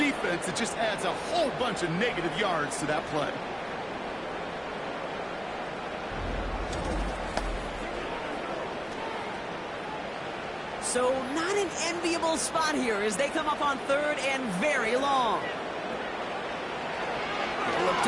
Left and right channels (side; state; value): both; identical; correlation 1.00